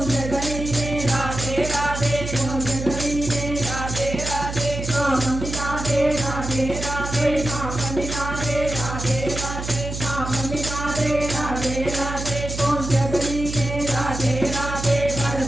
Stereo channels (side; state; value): right; noise; hum, 7 dB below the sound